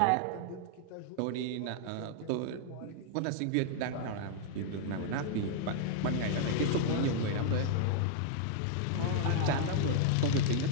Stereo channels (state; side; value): different; both; correlation -0.01